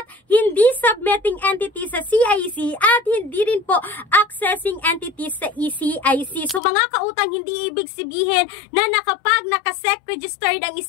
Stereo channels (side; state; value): right; drops out; at 6.6 s